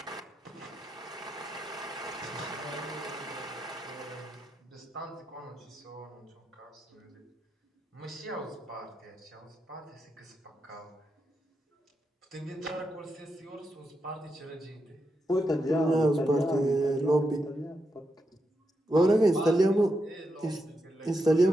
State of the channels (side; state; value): both; normal; correlation 0.85